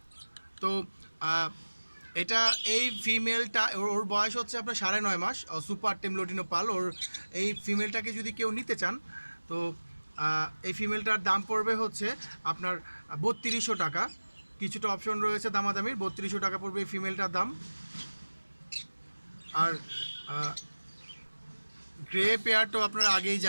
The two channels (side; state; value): both; inverted; correlation -1.00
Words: তো এটা এই ফিমেলটা ওর বয়স হচ্ছে আপনার 9.5 মাস। সুপার টেম লোটিনো পাল। ওর এই ফিমেলটাকে যদি কেউ নিতে চান, তো এই ফিমেলটার দাম পড়বে হচ্ছে আপনার 3200 টাকা। কিছুটা অপশন রয়েছে দামাদামির। 3200 টাকা পড়বে এই ফিমেলটার দাম। আর গ্রে পেয়ার তো আপনারা আগেই